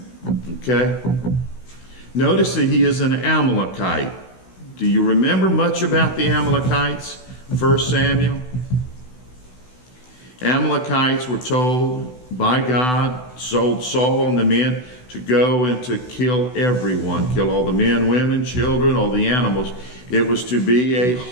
Okay? Notice that he is an Amalekite. Do you remember much about the Amalekites? 1 Samuel? Amalekites were told by God, told Saul and the men to go and to kill everyone, kill all the men, women, children, all the animals. It was to be a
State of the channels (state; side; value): late; right; 16 ms